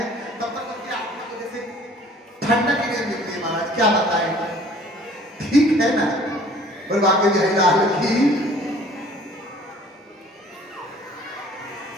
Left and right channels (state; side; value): normal; both; correlation 0.52